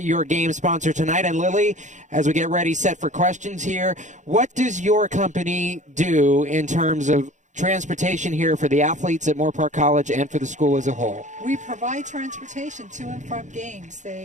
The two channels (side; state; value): left; late; 0.35 ms